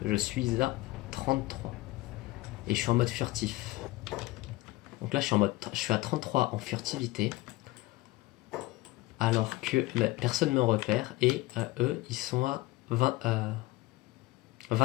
je suis à 33. Et je suis en mode furtif. Donc là je suis à 33 en furtivité. Alors que personne ne me repère. Et eux ils sont à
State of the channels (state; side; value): quieter; right; 19.2 dB